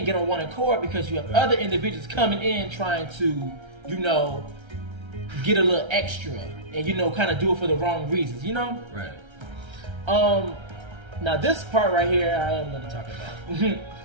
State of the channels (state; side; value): late; left; 1.3 ms